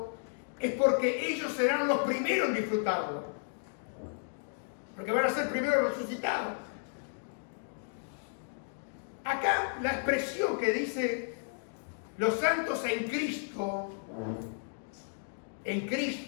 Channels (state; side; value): silent; right; digital silence